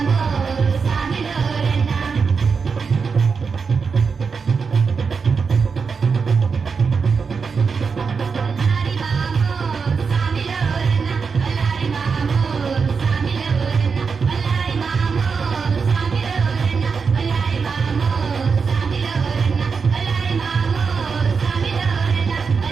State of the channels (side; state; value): left; quieter; 5.4 dB